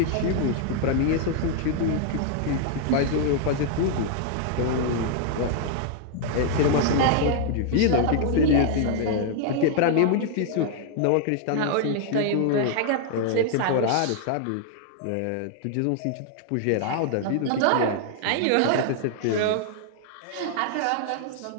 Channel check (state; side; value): different; both; correlation 0.00